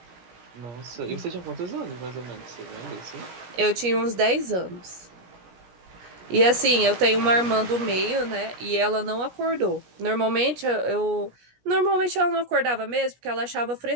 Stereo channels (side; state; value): left; late; 17 ms